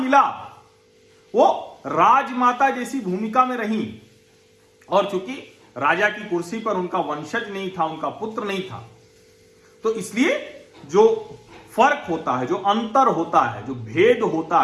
वो राजमाता जैसी भूमिका में रही, और चूंकि राजा की कुर्सी पर उनका वंशज नहीं था, उनका पुत्र नहीं था, तो इसलिए जो फर्क होता है, जो अंतर होता है, जो भेद होता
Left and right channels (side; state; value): both; identical; correlation 1.00